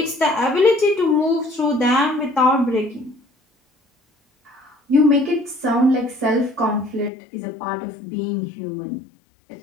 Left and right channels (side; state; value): right; drops out; at 7.1 s